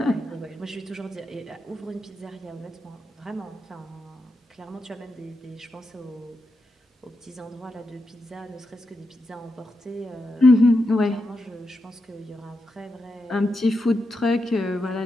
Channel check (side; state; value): both; normal; correlation 0.86